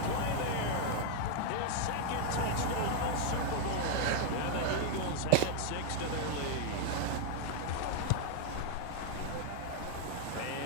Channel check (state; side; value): different; both; correlation 0.00